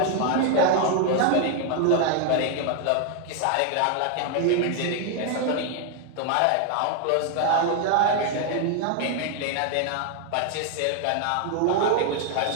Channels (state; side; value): different; both; correlation 0.00